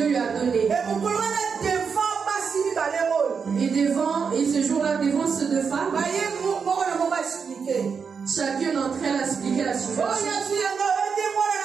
lui a donné. Et ce jour-là, devant ces deux femmes, chacune d'entre elles a expliqué la situation.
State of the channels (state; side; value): quieter; left; 6.0 dB